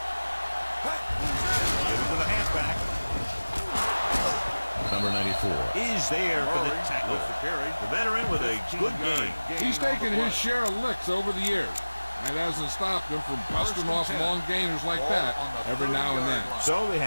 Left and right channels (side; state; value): both; inverted; correlation -1.00